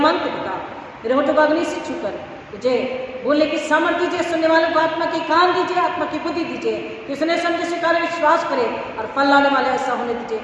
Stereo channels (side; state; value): both; identical; correlation 1.00